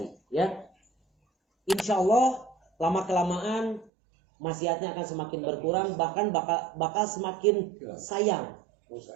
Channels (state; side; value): drops out; left; at 3.9 s